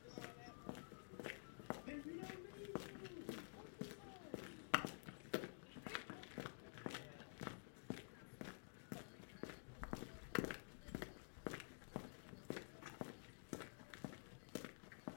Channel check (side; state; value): right; silent; digital silence